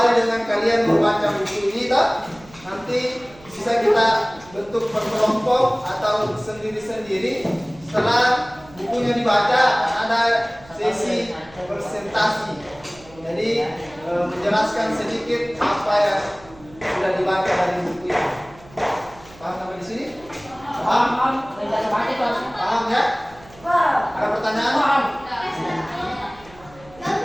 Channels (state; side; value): noise; right; hum, 23 dB below the sound